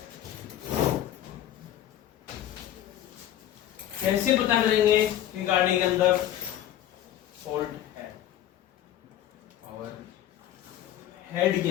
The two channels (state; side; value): quieter; right; 12.0 dB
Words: कैसे पता करेंगे कि गाड़ी के अंदर फॉल्ट है? हेड के